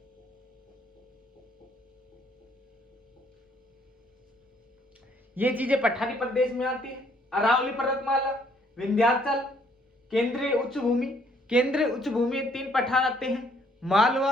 ये चीजें पठारी प्रदेश में आती है। अरावली पर्वतमाला, विंध्याचल, केंद्रीय उच्च भूमि। केंद्रीय उच्च भूमि में 3 पठार आते हैं,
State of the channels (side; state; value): both; normal; correlation 0.65